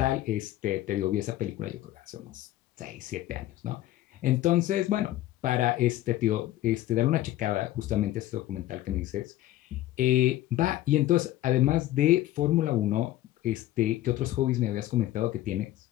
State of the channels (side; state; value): right; quieter; 14.7 dB